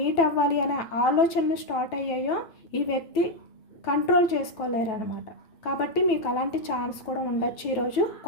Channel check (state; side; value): late; right; 9.2 ms